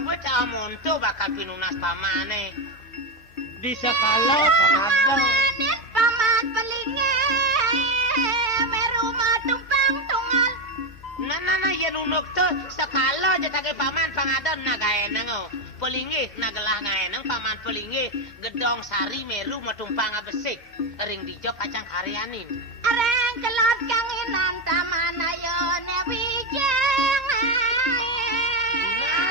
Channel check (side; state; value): both; normal; correlation 0.10